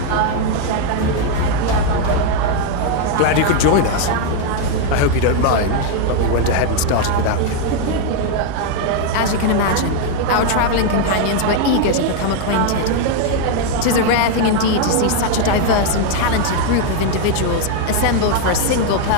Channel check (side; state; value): both; different; correlation 0.01